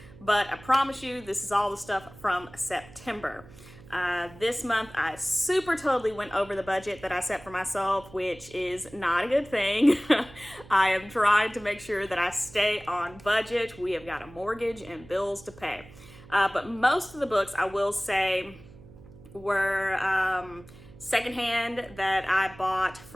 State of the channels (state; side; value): noise; right; hum, 20 dB below the sound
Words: but I promise you this is all the stuff from September. This month I super totally went over the budget that I set for myself, which is not a good thing. I am trying to make sure that I stay on budget. We have got a mortgage and bills to pay. But most of the books, I will say, were secondhand that I bought